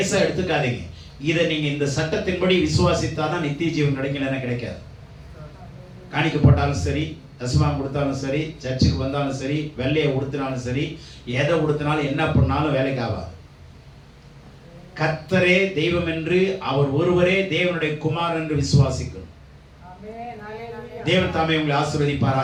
எடுத்துக்காதீங்க. இதை நீங்க இந்த சட்டத்தின்படி விசுவாசித்தாதான் நித்திய ஜீவன் கிடைக்கலன்னா கிடைக்காது. காணிக்க போட்டாலும் சரி, தசமாம் கொடுத்தாலும் சரி, சர்ச்சுக்கு வந்தாலும் சரி, வெள்ளையை உடுத்தினாலும் சரி, எதை உடுத்தினாலும் என்ன பண்ணாலும் வேலைக்கு ஆகாது. கர்த்தரே தெய்வம் என்று, அவர் ஒருவரே தேவனுடைய குமாரன் என்று விசுவாசிக்கணும். தேவன் தாமே உங்களை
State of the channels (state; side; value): identical; both; correlation 1.00